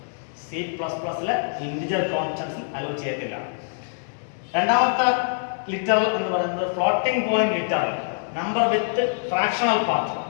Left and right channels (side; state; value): right; silent; digital silence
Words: C++ലെ ഇന്റിജർ കോൺസ്റ്റന്റ്സിൽ അലോ ചെയ്യത്തില്ല. രണ്ടാമത്തെ ലിറ്ററൽ എന്ന് പറയുന്നത് ഫ്ലോട്ടിംഗ് പോയിന്റ് ലിറ്ററൽ, നമ്പർ വിത്ത് ഫ്രാക്ഷണൽ